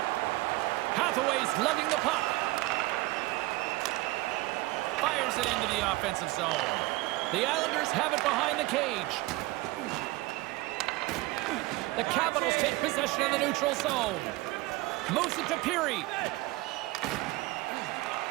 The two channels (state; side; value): quieter; left; 20.5 dB